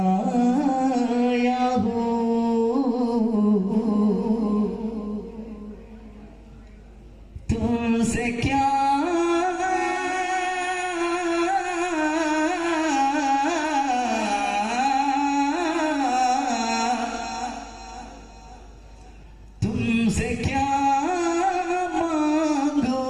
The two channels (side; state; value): both; identical; correlation 1.00